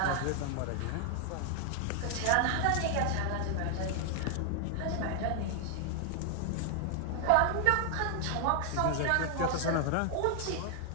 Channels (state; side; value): different; both; correlation 0.00